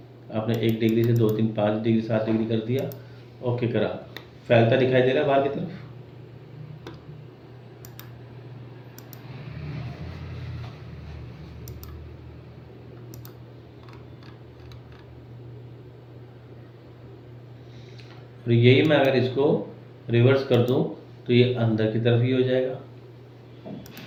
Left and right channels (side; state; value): both; identical; correlation 1.00